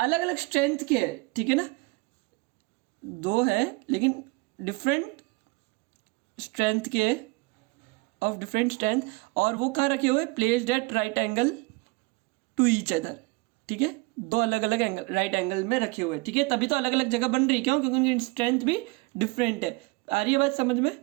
अलग स्ट्रेंथ के है, ठीक है ना, 2 है लेकिन डिफरेंट स्ट्रेंथ के, ऑफ डिफरेंट स्ट्रेंथ, और वो कहाँ रखे हुए, placed at right angle to each other, ठीक है, 2 अलग अलग एंगल राइट एंगल में रखे हुए, ठीक है, तभी तो अलग अलग जगह बन रही, क्यों, क्योंकि उनकी स्ट्रेंथ भी डिफरेंट है। आ रही है बात समझ में।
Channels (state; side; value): quieter; left; 26.2 dB